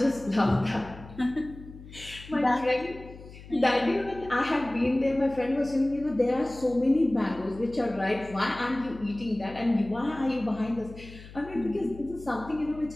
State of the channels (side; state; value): left; noise; hum, 17 dB below the sound